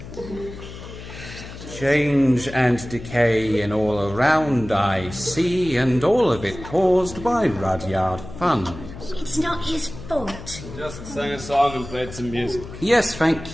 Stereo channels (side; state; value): left; noise; hum, 13 dB below the sound